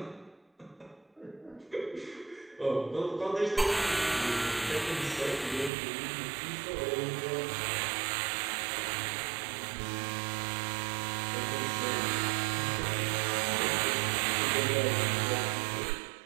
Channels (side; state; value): left; drops out; at 5.7 s